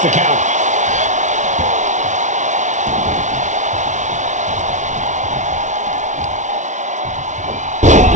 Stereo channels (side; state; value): left; late; 0.35 ms